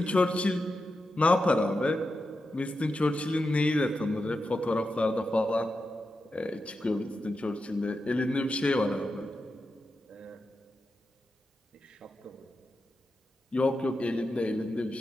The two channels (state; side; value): normal; both; correlation 0.89